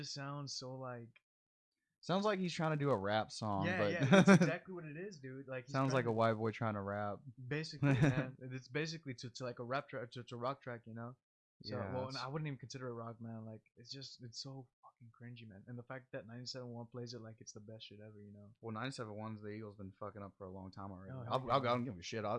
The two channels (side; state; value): both; identical; correlation 1.00